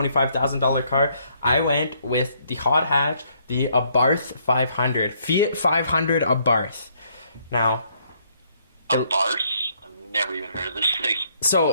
car, I went with the hot hatch, the Abarth 500. Fiat 500 Abarth. Now... Abarth? I've never even heard of this thing.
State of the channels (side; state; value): both; inverted; correlation -0.68